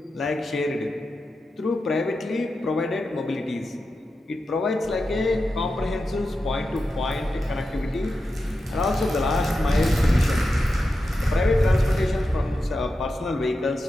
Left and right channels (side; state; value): both; normal; correlation 0.90